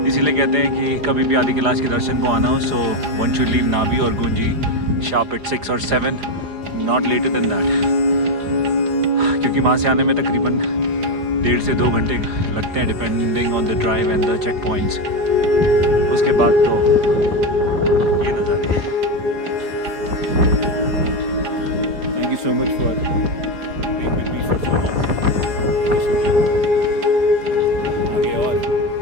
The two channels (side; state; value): left; late; 4.8 ms